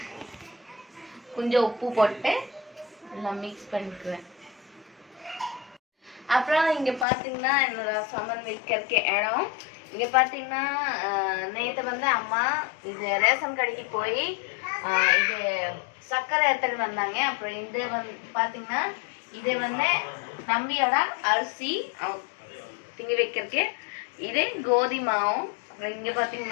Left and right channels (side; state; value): right; drops out; at 7.1 s